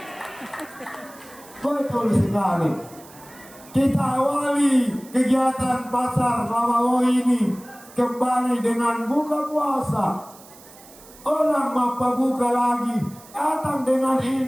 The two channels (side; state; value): right; noise; hiss, 22 dB below the sound